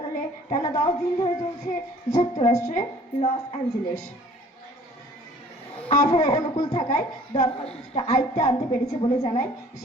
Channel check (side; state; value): both; normal; correlation 0.53